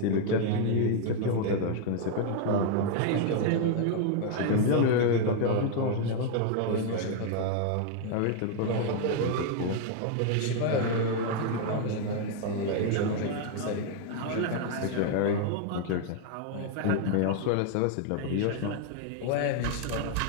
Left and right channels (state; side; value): different; both; correlation 0.00